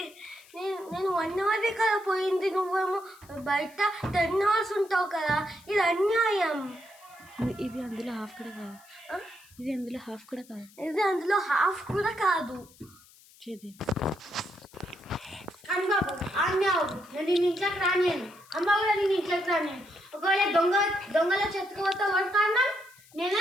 నేను 1 hour కదా పోయింది, నువ్వేమో బయట 10 hours ఉంటావు కదా. ఇది అన్యాయం. ఇది అందులో హాఫ్ కూడా కాదు. ఇది అందులో హాఫ్ కూడా కాదు. అమ్మబాబు నేను ఇంట్లోకి రానియను. అమ్మ కూడా నేను ఇంట్లోకి రానియను. ఒకవేళ దొంగల చెత్తకపోతే వాడు కారణం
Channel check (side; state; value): left; noise; hiss, 25 dB below the sound